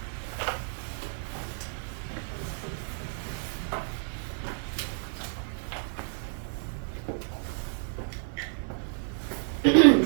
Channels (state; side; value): silent; left; digital silence